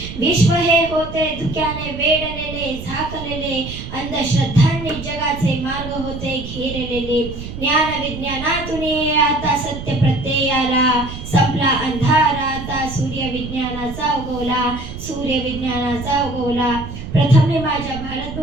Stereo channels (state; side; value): noise; right; rumble, 10 dB below the sound